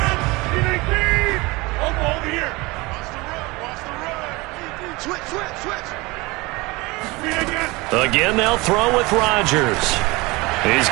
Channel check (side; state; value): left; quieter; 23.5 dB